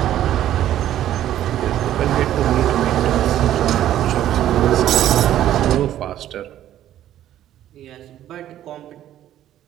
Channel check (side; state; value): left; quieter; 12.1 dB